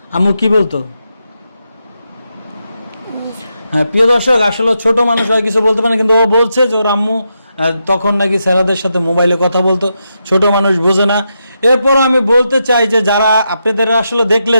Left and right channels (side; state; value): both; inverted; correlation -0.85